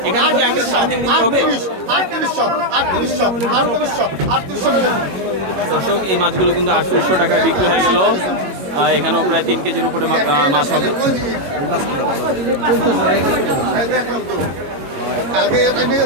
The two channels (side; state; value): left; late; 21 ms